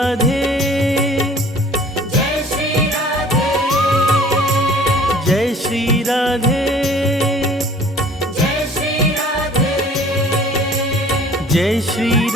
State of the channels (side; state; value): both; normal; correlation 0.50